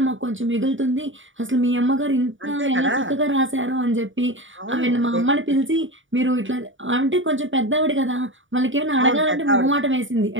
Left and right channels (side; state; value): left; late; 0.56 ms